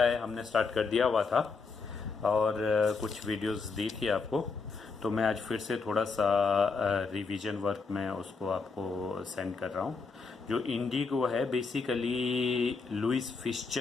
है हमने स्टार्ट कर दिया हुआ था और कुछ वीडियोस दी थी आपको, तो मैं आज फिर से थोड़ा सा रिवीजन वर्क में उसको आपको सेंड कर रहा हूँ। जो इंडिगो है बेसिकली लुइस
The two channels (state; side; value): quieter; right; 4.6 dB